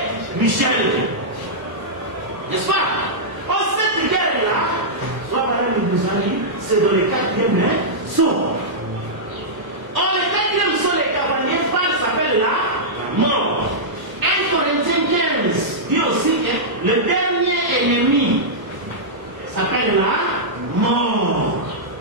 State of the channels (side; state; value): left; late; 1.0 ms